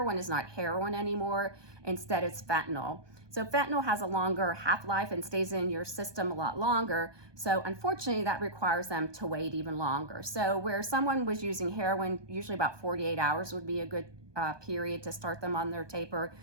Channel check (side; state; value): left; late; 1.2 ms